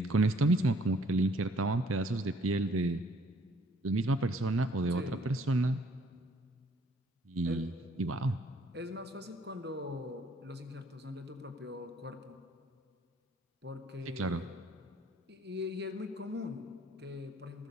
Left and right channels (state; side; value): normal; both; correlation 0.61